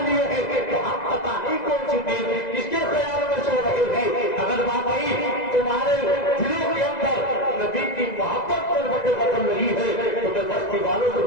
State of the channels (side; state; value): right; late; 2.0 ms